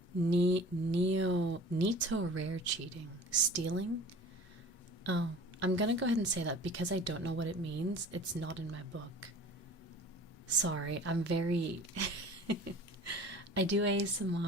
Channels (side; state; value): both; normal; correlation 0.43